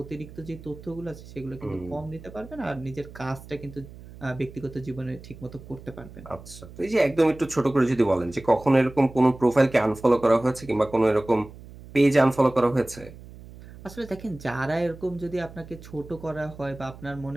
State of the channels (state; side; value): noise; right; hum, 17 dB below the sound